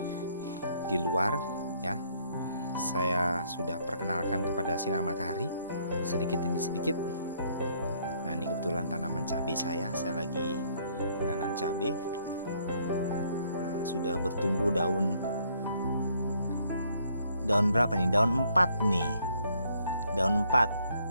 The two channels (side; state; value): both; inverted; correlation -0.67